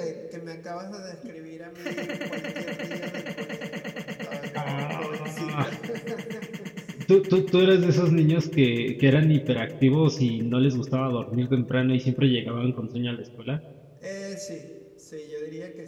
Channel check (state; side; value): identical; both; correlation 1.00